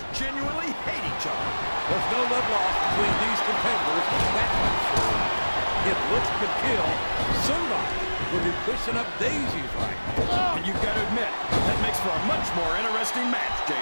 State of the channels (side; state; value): both; inverted; correlation -1.00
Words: genuinely hate each other. There's no love lost between these competitors, that's for sure. If looks could kill, somebody would be pushing up daisies right now. And you've got to admit, that makes for a much more interesting match,